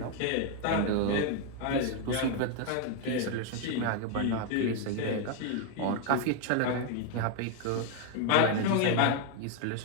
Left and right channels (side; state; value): both; different; correlation 0.01